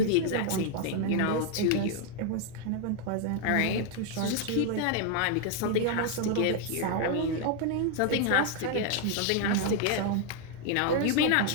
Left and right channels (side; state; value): both; different; correlation 0.01